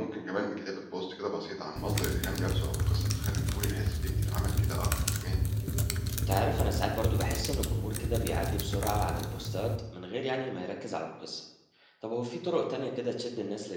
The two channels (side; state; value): both; identical; correlation 1.00